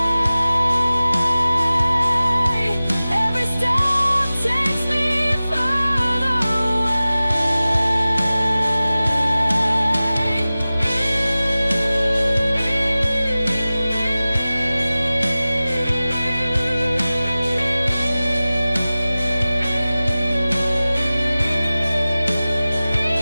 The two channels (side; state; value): both; inverted; correlation -0.97